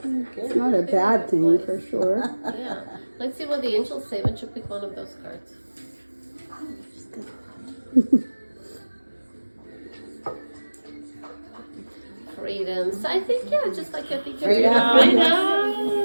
It's not a bad thing for sure. Yeah. Let's see what the angels say. Why don't you pick one of those cards? Freedom. So I think, just like I think you're Freedom. Freedom.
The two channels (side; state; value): both; inverted; correlation -1.00